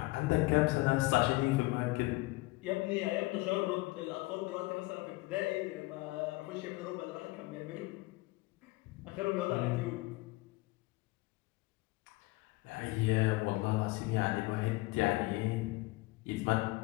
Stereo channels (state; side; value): quieter; right; 21.6 dB